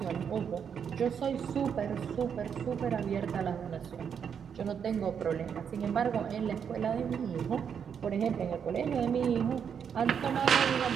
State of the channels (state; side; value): quieter; left; 7.4 dB